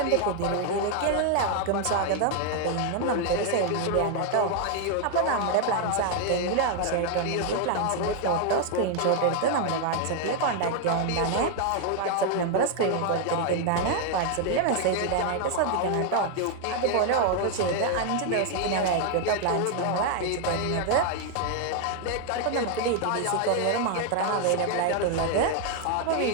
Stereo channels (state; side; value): different; both; correlation 0.00